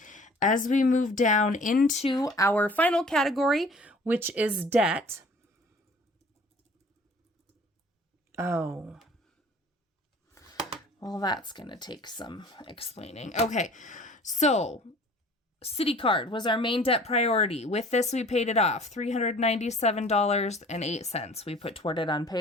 as we move down into our final category, which is debt. Oh. Well, that's going to take some explaining. Okay, so Citi card was our main debt priority. With this, we paid it off, $397.08. We put toward it on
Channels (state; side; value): normal; both; correlation 0.49